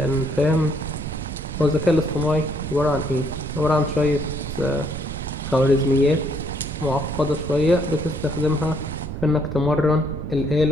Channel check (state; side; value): noise; right; rumble, 7 dB below the sound